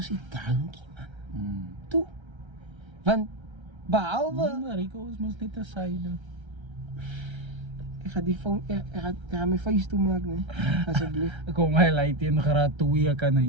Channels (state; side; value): late; left; 1.3 ms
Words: nie drankie man. Toe. Want behalwe Nee, maar Rico is mos net 'n syde. ek gaan die phone, ek gaan my face toe maak nee. Asseblief. Ek kom my lei teen graad 2 kan hy